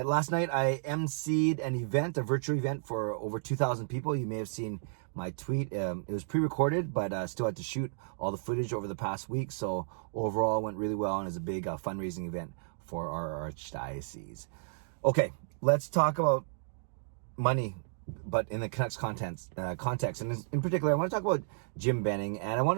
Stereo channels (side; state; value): left; silent; digital silence